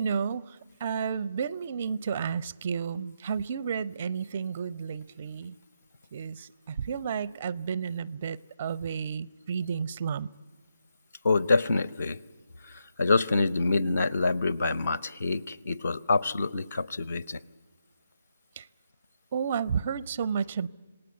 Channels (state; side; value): inverted; both; correlation -0.80